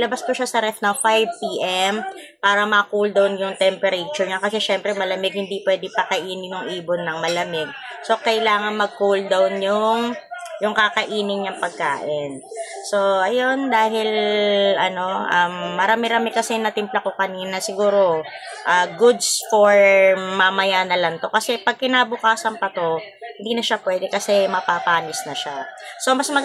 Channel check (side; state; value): both; identical; correlation 1.00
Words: ko siya sa ref na 5 PM para ma-cool down yung temperature niya. Kasi syempre malamig, hindi pwede pakainin yung ibon ng malamig. So, kailangan mag-cool down yung kakainin niyang pagkain. So, ayun, dahil, marami-rami kasi natimpla ko kanina, siguro, goods for mamaya na lang to. Kasi pag kinabukasan pa to, hindi na siya pwede kasi mapapanis na siya. So, mas